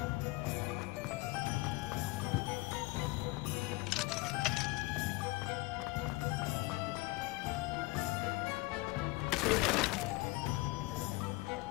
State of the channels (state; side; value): quieter; right; 21.5 dB